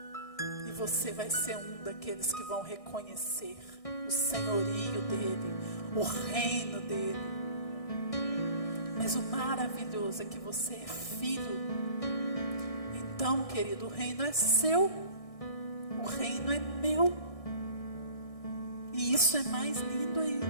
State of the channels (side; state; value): right; late; 1.6 ms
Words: E você vai ser um daqueles que vão reconhecer o senhorio dele, o reino dele. Mas o maravilhoso é que você é filho. Então, querido, o reino é seu. O reino é meu. E isso é mais lindo